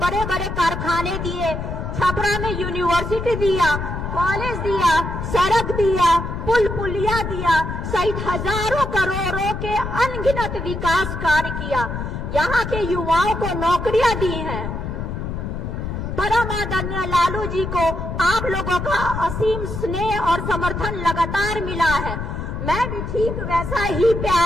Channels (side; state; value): left; noise; rumble, 5 dB below the sound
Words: बड़े कारखाने दिए, छपरा में यूनिवर्सिटी दिया, कॉलेज दिया, सड़क दिया, पुल पुलिया दिया, सहित हजारों करोड़ों के अनगिनत विकास कार्य किया, यहाँ के युवाओं को नौकरियां दी हैं। परम आदरणीय लालू जी को आप लोगों का असीम स्नेह और समर्थन लगातार मिला है। मैं भी ठीक वैसा ही